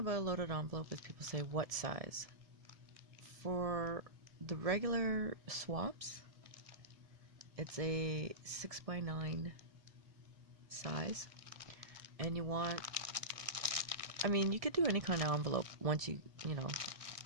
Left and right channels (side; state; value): left; late; 1.6 ms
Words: a loaded envelope is people say, what size? For the regular swaps, it's a 6x9 size, and you want, you could do any kind of envelope once